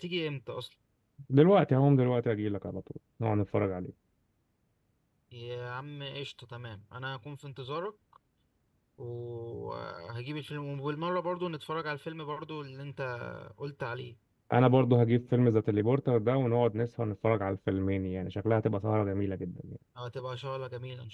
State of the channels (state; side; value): identical; both; correlation 1.00